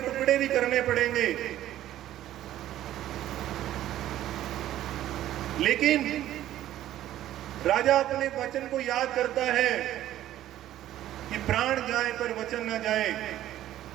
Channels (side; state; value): left; quieter; 13.0 dB